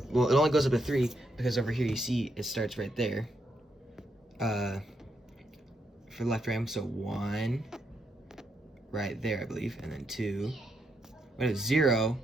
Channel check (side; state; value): both; normal; correlation 0.79